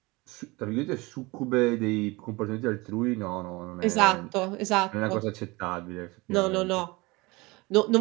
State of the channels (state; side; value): quieter; left; 23.7 dB